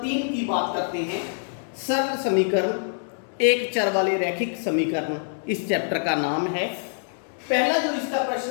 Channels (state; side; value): silent; right; digital silence